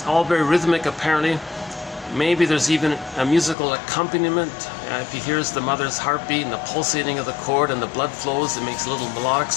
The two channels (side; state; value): right; drops out; at 3.6 s